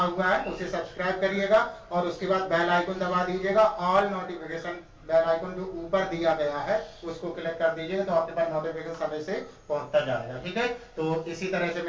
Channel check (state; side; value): identical; both; correlation 1.00